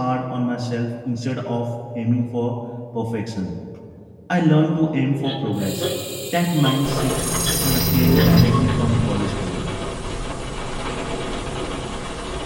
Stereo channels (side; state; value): both; identical; correlation 1.00